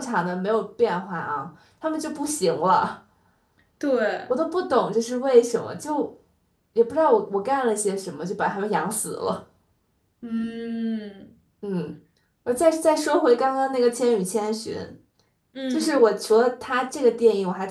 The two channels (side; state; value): both; identical; correlation 1.00